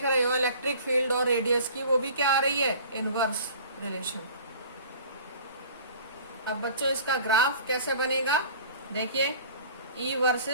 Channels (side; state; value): both; inverted; correlation -0.46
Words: रहे हो इलेक्ट्रिक फील्ड और रेडियस की, वो भी क्या आ रही है, इनवर्स रिलेशन। अब बच्चों इसका ग्राफ कैसे बनेगा, देखिए E